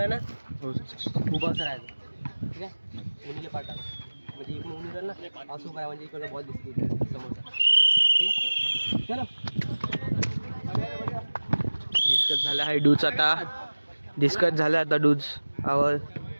ना उभा असं राहायचं. ठीक आहे कोणीला पाठवा म्हणजे इकडून उभी राहिल ना असं काय म्हणजे इकडे बॉल दिसते समोरचा. ठीक आहे चलो. डिस्कस झाला आहे डूज. आता डिस्कस झाला आता डूज आवर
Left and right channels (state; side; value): inverted; both; correlation -1.00